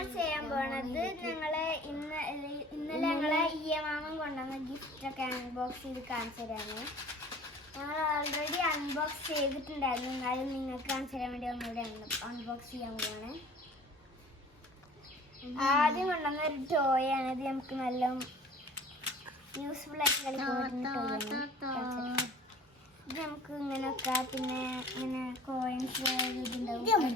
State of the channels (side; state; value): both; normal; correlation 0.46